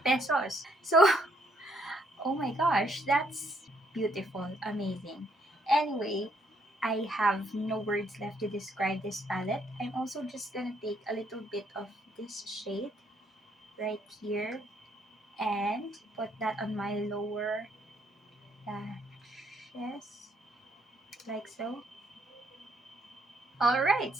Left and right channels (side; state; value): both; normal; correlation 0.70